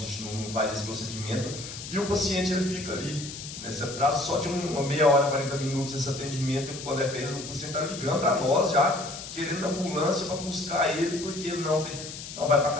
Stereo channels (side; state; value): left; noise; hiss, 10 dB below the sound